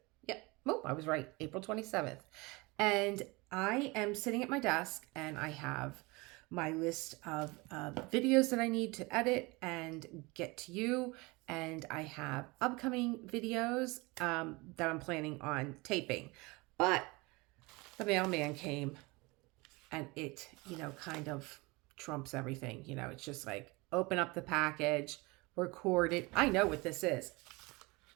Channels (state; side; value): quieter; left; 24.9 dB